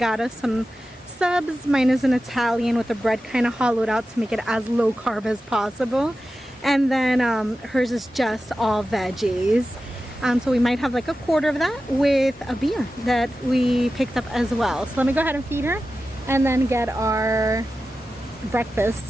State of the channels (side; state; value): both; normal; correlation 0.93